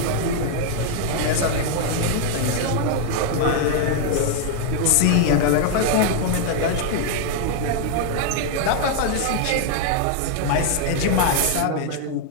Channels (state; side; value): different; both; correlation 0.00